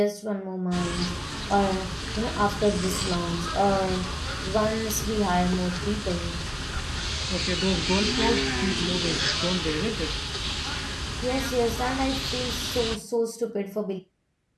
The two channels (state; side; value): identical; both; correlation 1.00